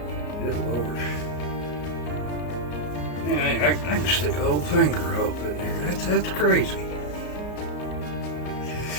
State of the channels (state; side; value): late; right; 33 ms